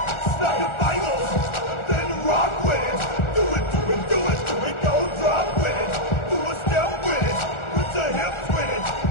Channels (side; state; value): right; late; 1.4 ms